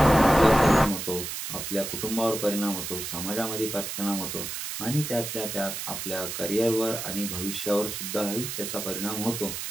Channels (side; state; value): right; noise; hiss, 5 dB below the sound